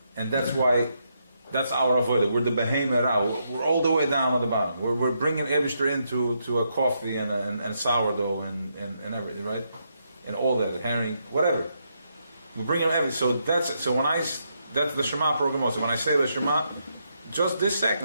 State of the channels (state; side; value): inverted; both; correlation -0.79